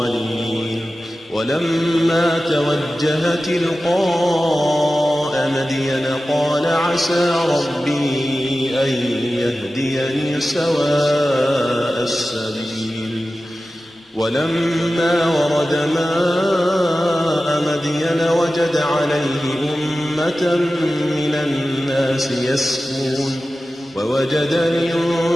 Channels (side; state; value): both; normal; correlation 0.95